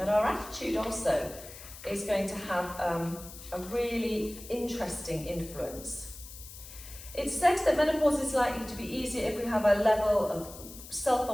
our attitude also is going to have a really interesting influence. It's said that menopause is likely to be easier if we have a level of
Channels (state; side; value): noise; left; hiss, 15 dB below the sound